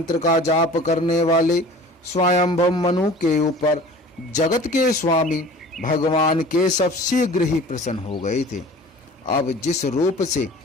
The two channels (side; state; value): both; normal; correlation 0.43